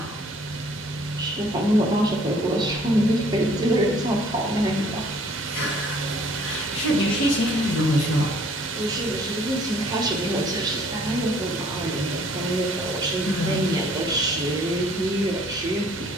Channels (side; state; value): both; normal; correlation 0.58